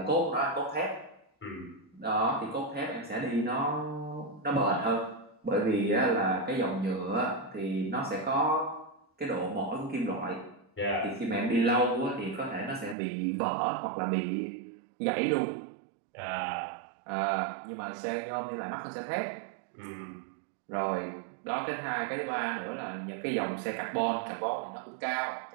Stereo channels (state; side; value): drops out; left; at 13.0 s